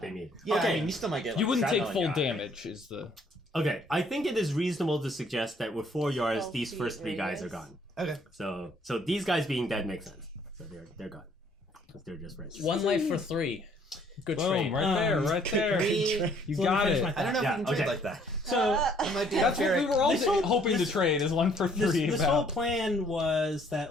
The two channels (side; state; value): both; normal; correlation 0.62